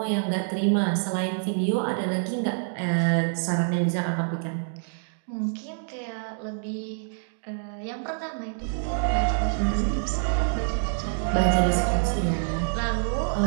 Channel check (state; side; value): silent; left; digital silence